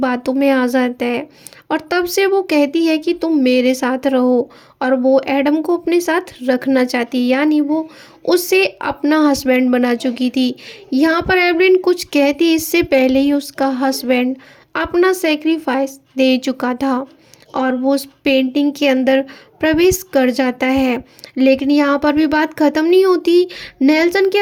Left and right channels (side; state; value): both; identical; correlation 1.00